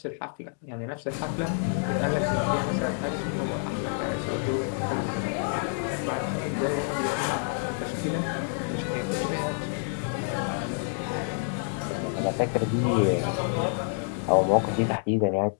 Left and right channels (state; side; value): silent; right; 59 dB below the other